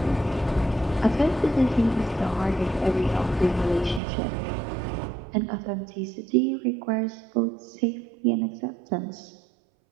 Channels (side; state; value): left; drops out; at 4.0 s